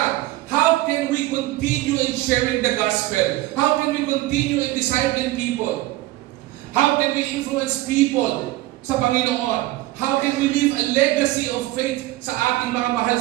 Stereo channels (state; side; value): quieter; left; 17.2 dB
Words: How can we continue in sharing the gospel? How can we continue in discipling people? How can we influence people sa Panginoon? How can we leave a legacy of faith sa ating mga mahal